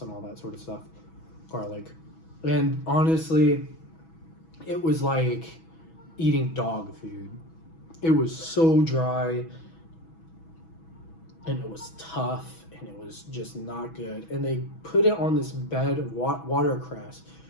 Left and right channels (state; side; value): late; right; 6.1 ms